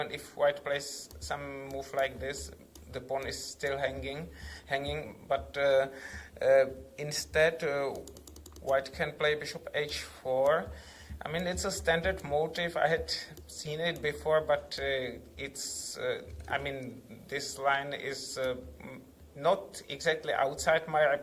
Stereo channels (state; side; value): identical; both; correlation 1.00